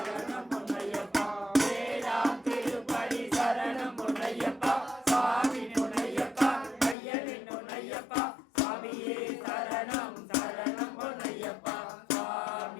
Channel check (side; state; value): right; drops out; at 7.0 s